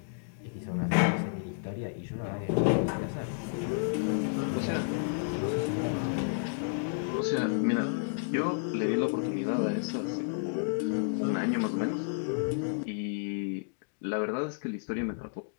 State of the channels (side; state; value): right; silent; digital silence